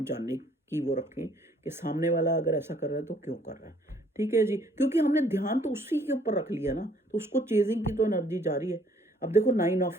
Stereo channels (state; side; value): normal; both; correlation 0.62